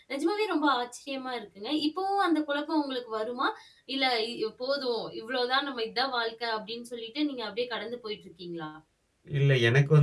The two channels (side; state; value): both; identical; correlation 1.00